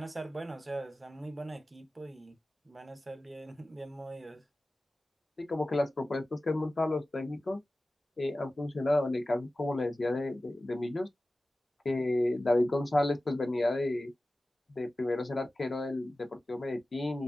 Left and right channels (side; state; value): both; normal; correlation 0.96